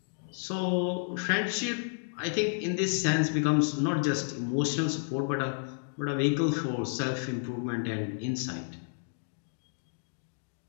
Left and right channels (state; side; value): silent; right; digital silence